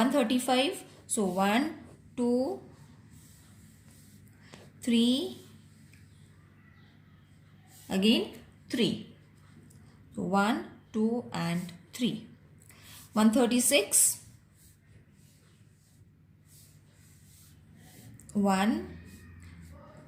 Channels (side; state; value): both; identical; correlation 1.00